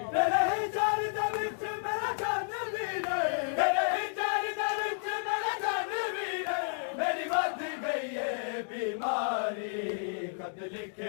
ਤੇਰੇ ਜਰ ਦੇ ਵਿੱਚ ਮੇਰਾ ਜਨ ਵੀਰੇ ਤੇਰੇ ਜਰ ਦੇ ਵਿੱਚ ਮੇਰਾ ਜਨ ਵੀਰੇ ਮੇਰੀ ਵੱਧ ਗਈ ਏ ਬਿਮਾਰੀ ਖਤ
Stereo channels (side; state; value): right; silent; digital silence